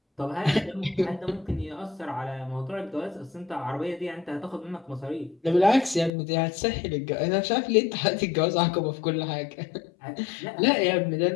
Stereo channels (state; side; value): drops out; right; at 6.1 s